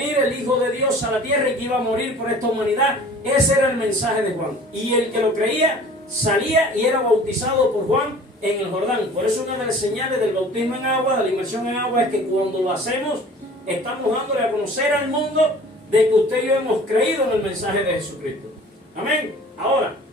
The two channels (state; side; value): normal; both; correlation 0.46